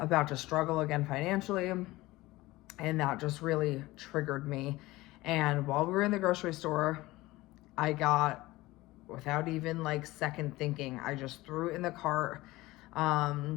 to struggle again financially. And that just really triggered me. And while we were in the grocery store, I got without even like second thinking, I just threw it in the cart.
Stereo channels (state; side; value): quieter; right; 19.1 dB